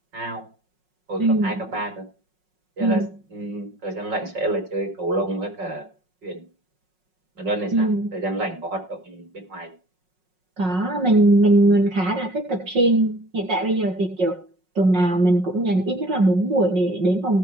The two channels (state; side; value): late; left; 5.4 ms